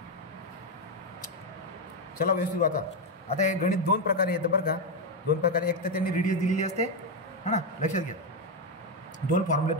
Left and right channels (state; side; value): normal; both; correlation 0.06